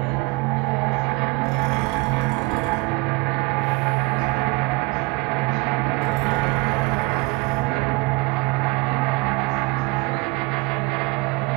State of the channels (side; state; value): left; quieter; 25.6 dB